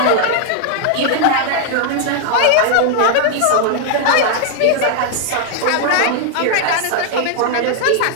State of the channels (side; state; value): both; different; correlation 0.00